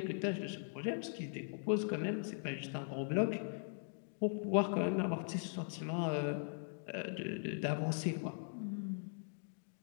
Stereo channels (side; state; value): right; silent; digital silence